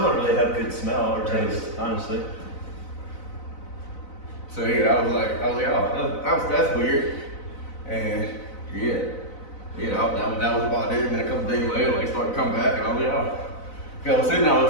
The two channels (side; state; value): right; late; 4.0 ms